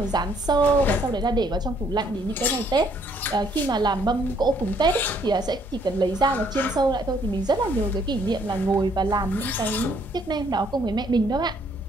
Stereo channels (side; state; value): both; normal; correlation 0.66